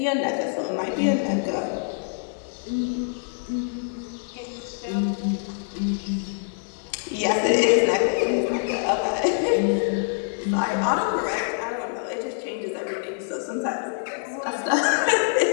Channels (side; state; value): right; silent; 62 dB below the other